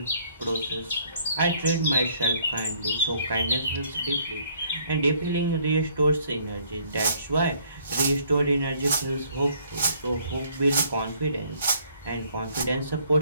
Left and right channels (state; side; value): inverted; both; correlation -0.63